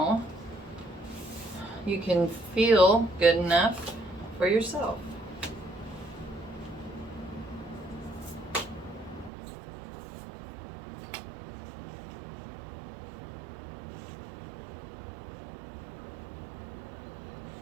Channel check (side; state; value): left; drops out; at 9.3 s